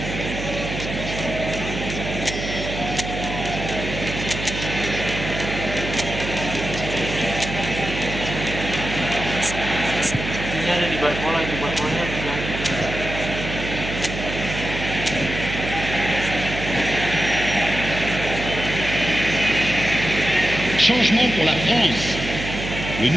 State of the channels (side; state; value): right; noise; hum, 6 dB below the sound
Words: Ini ada di Barcola, itu Barcolanya yang Changement pour la France. Le